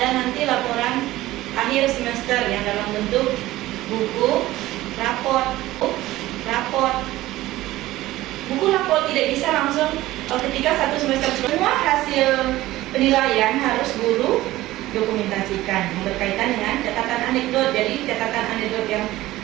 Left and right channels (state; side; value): quieter; left; 16.6 dB